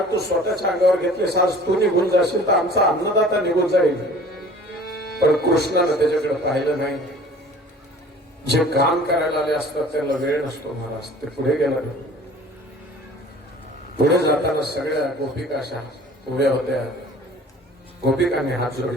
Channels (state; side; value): normal; both; correlation 0.47